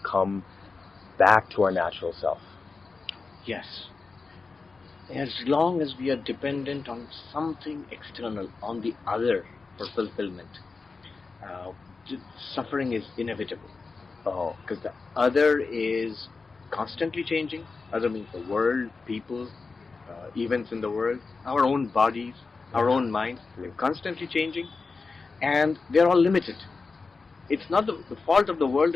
come back to our natural self? Yes. As long as we are dependent on something external, on the other for fulfillment, uh, suffering is inevitable. Because the other is constantly changing. Other means the world, people, events in the world, our own bodies, our own minds. They're constantly changing, and they're all limited. It's not the fault of the world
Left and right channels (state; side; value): quieter; right; 4.3 dB